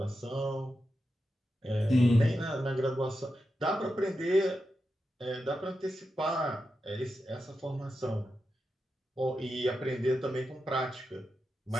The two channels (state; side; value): normal; both; correlation 0.89